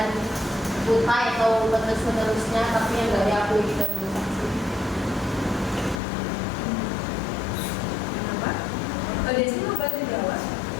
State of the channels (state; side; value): drops out; right; at 6.0 s